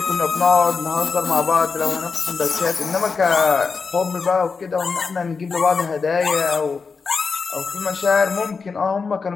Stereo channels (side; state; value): right; quieter; 5.0 dB